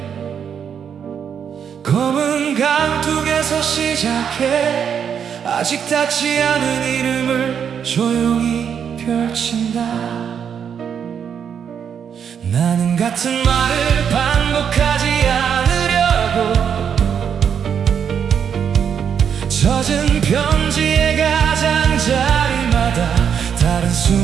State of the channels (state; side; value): quieter; left; 7.7 dB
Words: 검은 강둑에서 시작해 아직 닿지 않은 이름을 조용히 펼친다. 나는 같은 말을 반복하지 않으려고 젖은 편지의 가장자리마다 다른